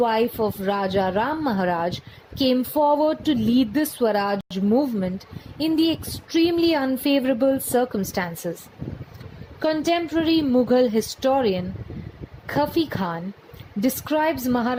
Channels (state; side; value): identical; both; correlation 1.00